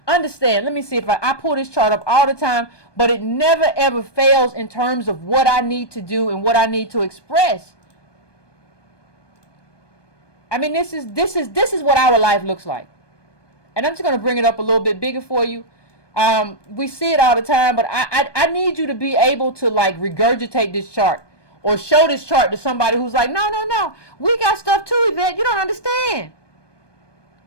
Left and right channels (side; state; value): right; late; 1.2 ms